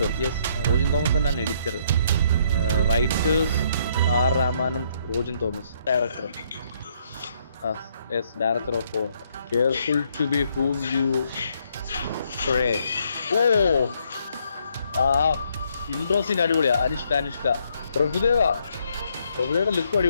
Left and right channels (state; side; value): inverted; both; correlation -0.70